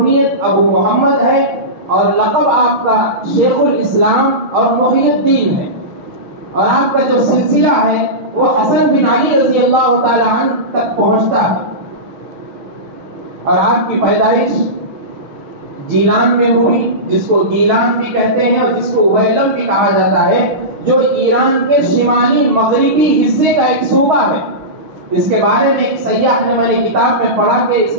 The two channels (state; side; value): late; left; 6.3 ms